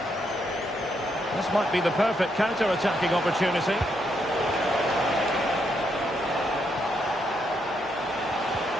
This might be the perfect counter-attacking opportunity.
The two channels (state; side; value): normal; both; correlation 0.77